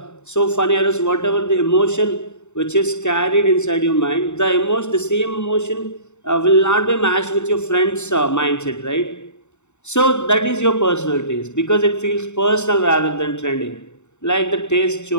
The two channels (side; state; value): right; late; 0.83 ms